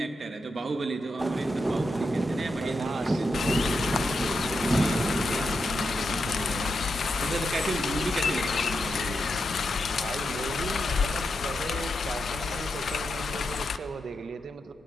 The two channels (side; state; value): both; normal; correlation 0.86